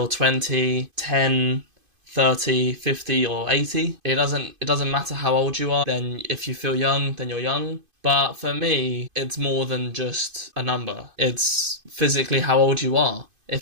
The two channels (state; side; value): late; left; 2.5 ms